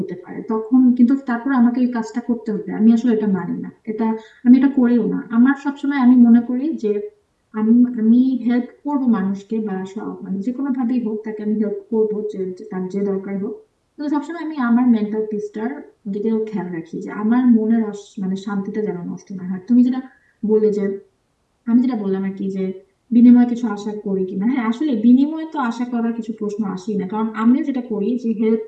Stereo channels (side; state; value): both; identical; correlation 1.00